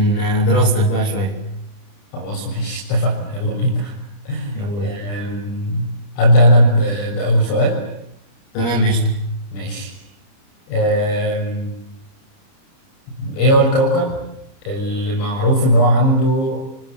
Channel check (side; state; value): right; late; 30 ms